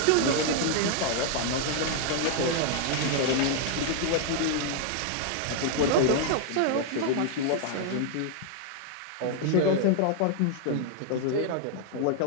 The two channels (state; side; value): different; both; correlation 0.00